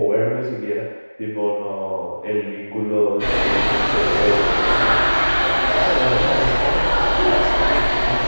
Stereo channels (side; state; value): both; inverted; correlation -1.00